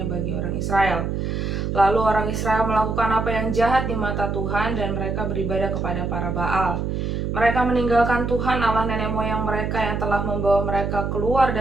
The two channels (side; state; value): right; noise; hum, 2 dB below the sound